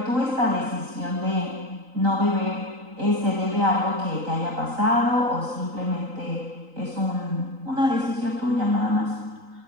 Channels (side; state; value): left; late; 3.9 ms